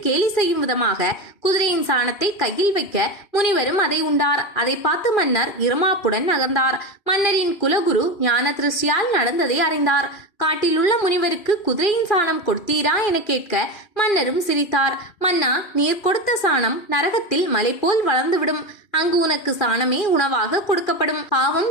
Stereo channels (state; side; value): late; right; 2.4 ms